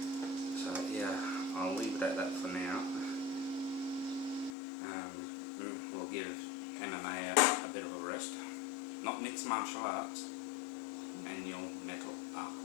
So yeah, I'll leave it at that for now. We'll give MMA a bit of a rest. Not mixed martial arts, manual metal arc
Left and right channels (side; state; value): right; drops out; at 4.5 s